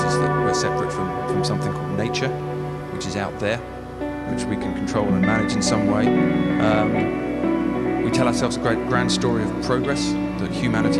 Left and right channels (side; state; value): both; identical; correlation 1.00